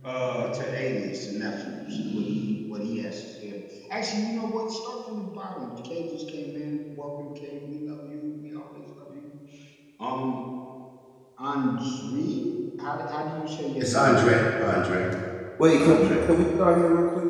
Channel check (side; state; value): both; identical; correlation 1.00